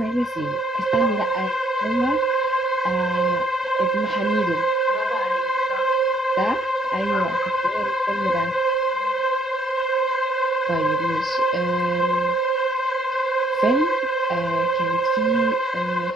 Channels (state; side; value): normal; both; correlation 0.68